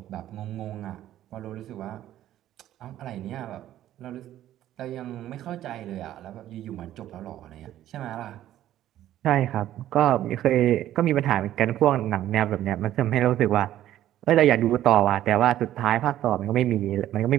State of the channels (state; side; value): quieter; left; 12.8 dB